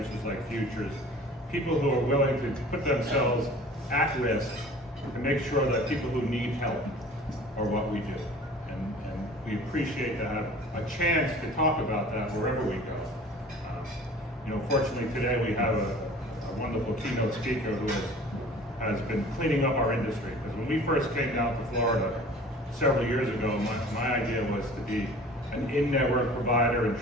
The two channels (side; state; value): both; normal; correlation 0.45